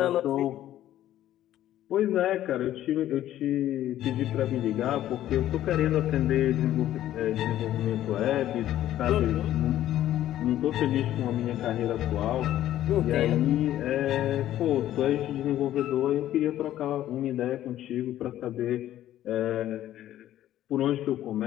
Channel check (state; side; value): quieter; right; 12.8 dB